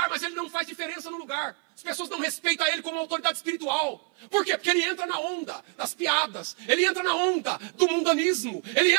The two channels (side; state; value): left; quieter; 34.2 dB